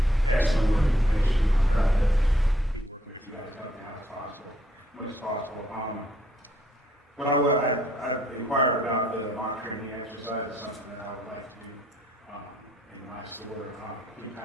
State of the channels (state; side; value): normal; both; correlation 0.69